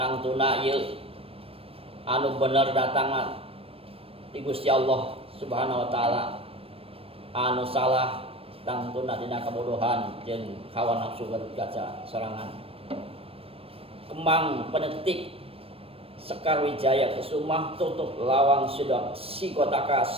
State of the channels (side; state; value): left; late; 0.28 ms